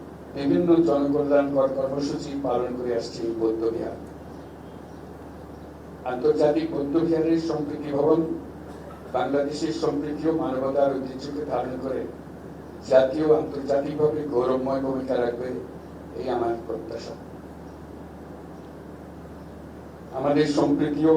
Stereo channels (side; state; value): both; identical; correlation 1.00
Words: বিভিন্ন জনকল্যাণকর কর্মসূচি পালন করে আসছে এই বৌদ্ধ বিহার। আন্তর্জাতিক বৌদ্ধ বিহারের সম্প্রীতি ভবন বাংলাদেশের সম্প্রীতি ও মানবতার ঐতিহ্যকে ধারণ করে জাতীয় আন্তর্জাতিকভাবে গৌরবময় ভূমিকা রাখবে, এই আমার প্রত্যাশা। আমাদের সম্প্রীতি ও